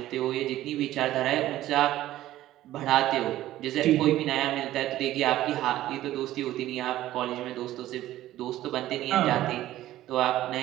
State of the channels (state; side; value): quieter; left; 14.4 dB